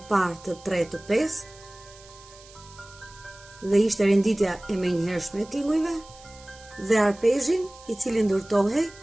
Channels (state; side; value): noise; right; hiss, 22 dB below the sound